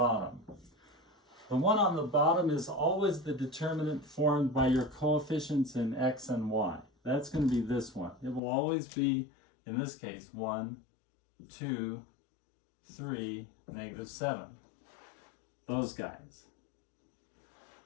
The one on the bottom is always the determinant formed by your coefficients in x and y. That's going to be this one. It will always be, in this case, 1, 2, 3, negative 7. Those guys.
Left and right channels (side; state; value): right; drops out; at 8.4 s